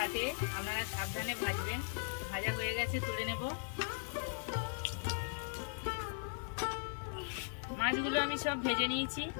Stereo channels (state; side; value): silent; right; digital silence